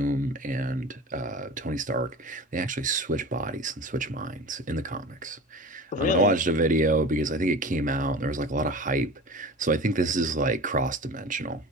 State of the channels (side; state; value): both; normal; correlation 0.34